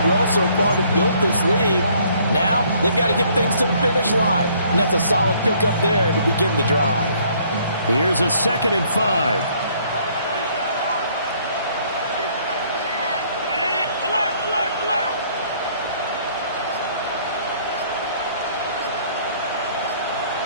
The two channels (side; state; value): both; inverted; correlation -0.62